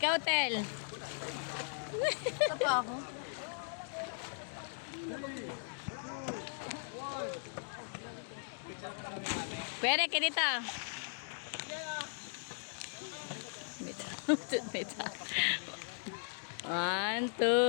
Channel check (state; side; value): silent; right; digital silence